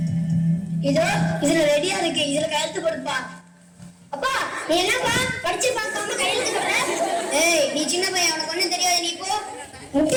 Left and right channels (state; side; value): identical; both; correlation 1.00